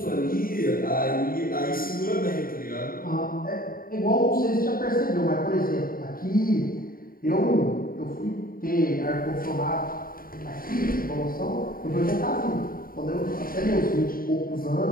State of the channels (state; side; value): late; right; 0.42 ms